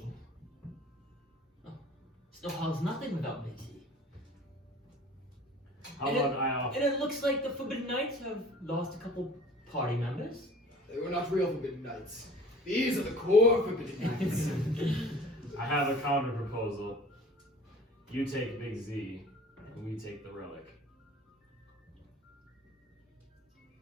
Snowhollow's nothing without Big Z. How And about I offer? And it looks like the Forbidden Knights have lost a couple party members. They were not real Forbidden Knights. These are the core Forbidden Knights. I have a counter proposal. You take Big Z, and we take the relic.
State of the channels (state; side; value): normal; both; correlation 0.46